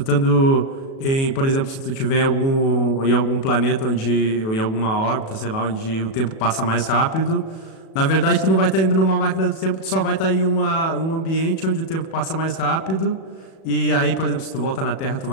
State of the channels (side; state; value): right; late; 37 ms